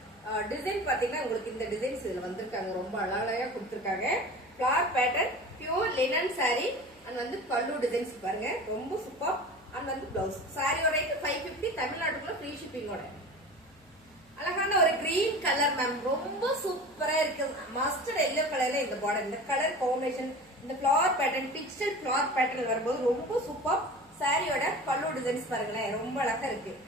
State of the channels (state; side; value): noise; left; hum, 29 dB below the sound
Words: டிசைன் பாத்தீங்கன்னா உங்களுக்கு இந்த டிசைன்ஸ் இதுல வந்திருக்காங்க. ரொம்ப அழகா கொடுத்துருக்காங்க. Flower pattern pure linen sorry and வந்து பல்லு டிசைன்ஸ் பாருங்க ரொம்ப சூப்பர். அண்ட் வந்து பிளவுஸ் சாரியோட ரேட் 550 தமிழ்நாட்டுக்குள்ள ஃப்ரீ ஷிப்பிங்கோட. அழகான ஒரு கிரீன் கலர் மேம் ரொம்ப சூப்பரா இருக்கு. மஸ்டர்ட் எல்லோ கலர்ல இந்த பார்டர் இந்த கலர் காம்பினேஷன் இந்த flower pattern digital flower pattern வரும்போது ரொம்ப சூப்பர். சாரியோட பல்லு டிசைன்ஸ் பாருங்களேன் ரொம்ப அழகா இருக்கு.